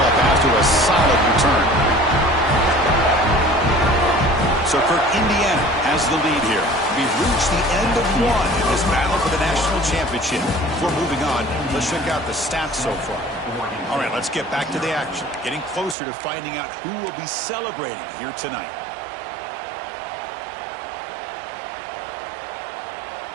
after a solid return. So for Indiana has the lead here. We've reached the end of one in this battle for the national championship. Before moving on, let's check out the stats so far. All right, let's get back to the action. Getting closer to finding out who will be celebrating here tonight.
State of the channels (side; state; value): left; drops out; at 16.0 s